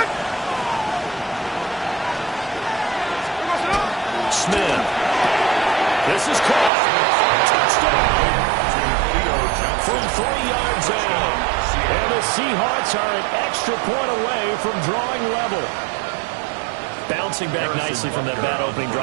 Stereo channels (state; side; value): drops out; left; at 6.7 s